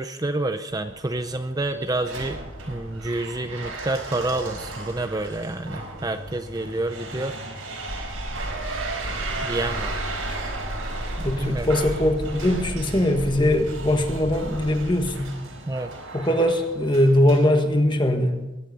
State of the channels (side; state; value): both; normal; correlation 0.71